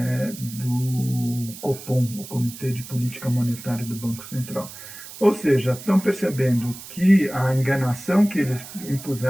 do Copom, o Comitê de Política Monetária do Banco Central. Ou seja, estão percebendo que a enganação que eles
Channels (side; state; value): right; noise; hiss, 14 dB below the sound